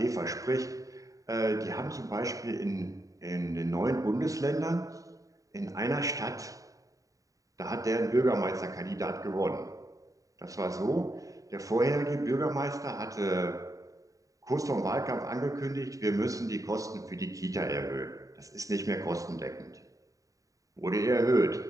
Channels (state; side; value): late; left; 0.16 ms